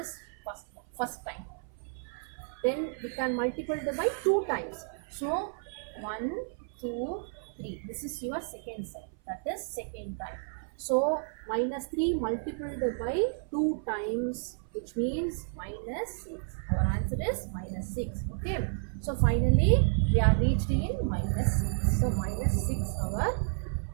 is first time. Then we can multiply by 2 times, so 1, 2, 3, this is your second sign, that is second time. So minus 3 multiplied by 2 times, which means minus 6. Our answer is minus 6. Okay, so finally we are reached in minus 6. So minus 6 our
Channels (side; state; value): left; silent; 55 dB below the other